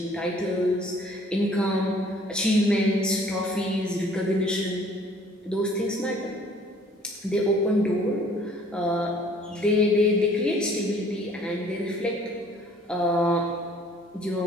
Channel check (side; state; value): both; normal; correlation 0.56